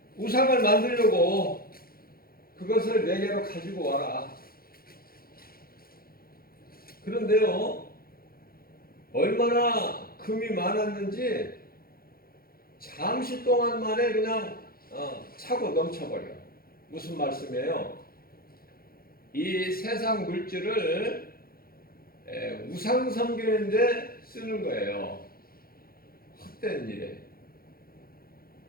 우상을 만들려고 그것을 내게로 가지고 와라. 그런데요, 얼마나 금이 많았는지 잠시 동안 만에 그냥 차고 넘쳐버려. 무슨 말씀이에요? 이 세상 물질을 우상 섬기는데 쓰는 거예요. 헛된 일에.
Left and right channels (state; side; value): late; right; 0.43 ms